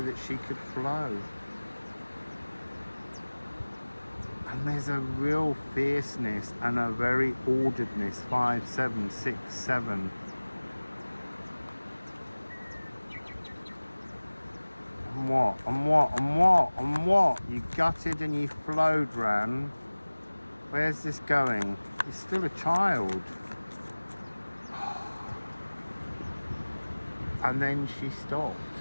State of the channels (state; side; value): inverted; both; correlation -1.00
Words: that she could flow. And there's a real fierceness and a very orderedness. 5, 7, 6, 7. And what? And what? And what? And what? You gutted and you flowed, Ran. Where's this going? You're still a child. and then she stopped.